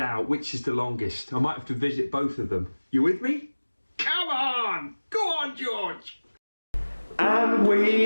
which is the longest. I might have to visit both of them. You with me? Come on! Go on, George! And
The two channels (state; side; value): inverted; both; correlation -1.00